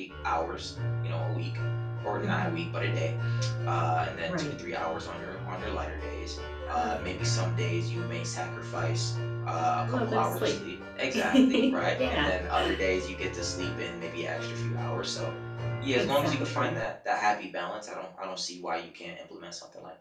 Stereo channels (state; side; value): identical; both; correlation 1.00